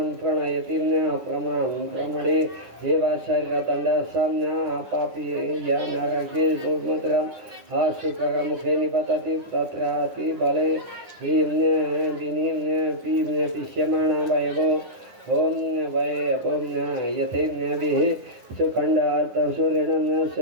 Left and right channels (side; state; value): left; late; 10 ms